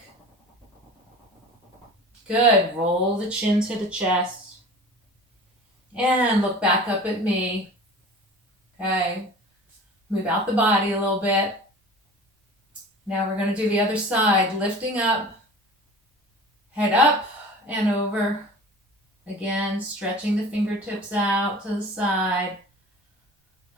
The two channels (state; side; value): normal; both; correlation 0.39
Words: Good. Roll the chin to the chest. And look back up at me. Okay. Move out the body a little bit. Now we're going to do the other side. Lifting up. Head up and over. Again, stretching the fingertips out to the side.